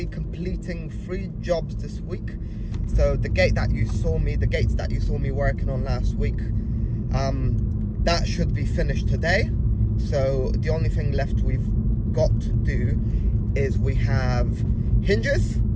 completing 3 jobs this week. So the gates that you saw me working on last week, that should be finished today. So the only thing left we've got to do is we have hinge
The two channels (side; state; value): both; identical; correlation 1.00